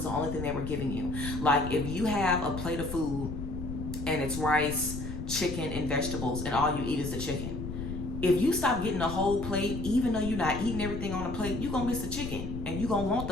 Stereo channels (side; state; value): left; noise; rumble, 6 dB below the sound